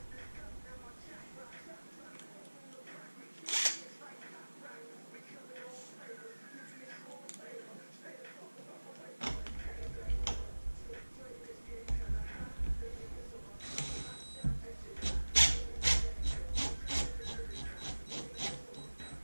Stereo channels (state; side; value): inverted; both; correlation -1.00